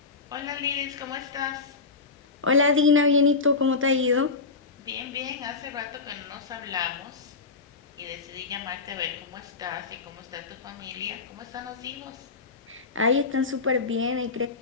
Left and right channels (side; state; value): right; quieter; 4.3 dB